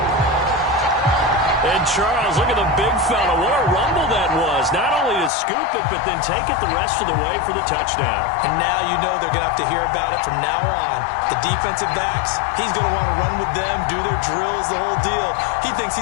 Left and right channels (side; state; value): right; drops out; at 5.3 s